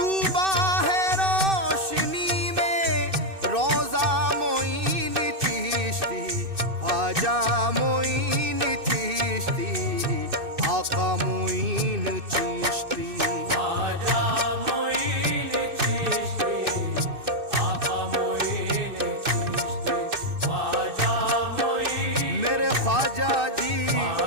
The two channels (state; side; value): late; left; 2.6 ms